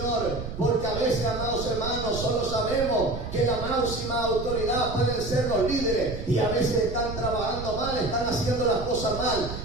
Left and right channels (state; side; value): noise; right; rumble, 8 dB below the sound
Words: porque a veces, amados hermanos, solo sabemos que la máxima autoridad pueden ser los líderes, y a veces están trabajando mal, están haciendo las cosas mal,